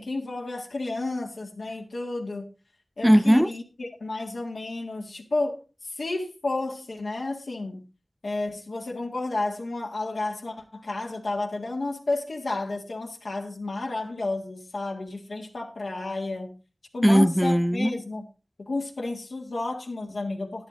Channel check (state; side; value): normal; both; correlation 0.98